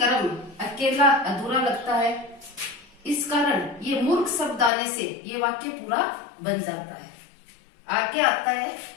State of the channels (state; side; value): drops out; right; at 4.7 s